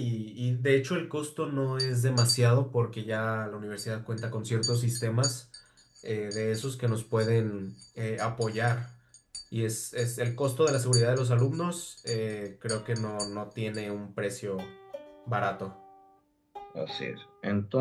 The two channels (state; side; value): identical; both; correlation 1.00